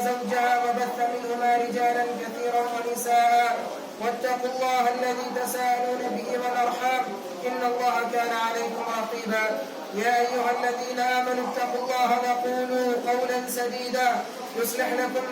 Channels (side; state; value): both; identical; correlation 1.00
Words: زوجها وبث منهما رجالا كثيرا ونساء واتقوا الله الذي تساءلون به والأرحام إن الله كان عليكم رقيبا. يا أيها الذين آمنوا اتقوا الله وقولوا قولا سديدا يصلح لكم